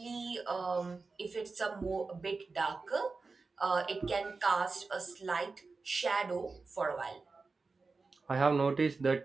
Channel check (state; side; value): quieter; left; 4.1 dB